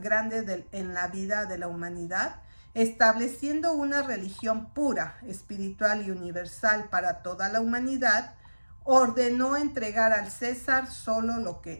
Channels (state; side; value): inverted; both; correlation -1.00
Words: grande en la vida de la humanidad, estableciendo una religión pura, espiritual y universal para toda la humanidad, ordenó entregar al César solo lo que